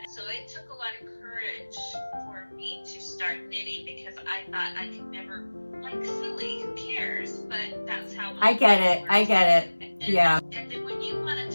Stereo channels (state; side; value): inverted; both; correlation -1.00